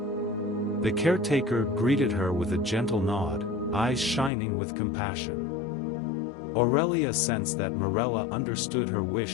The caretaker greeted her with a gentle nod, eyes shining with compassion. Aurelia sensed that Morella understood her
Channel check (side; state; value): right; drops out; at 4.3 s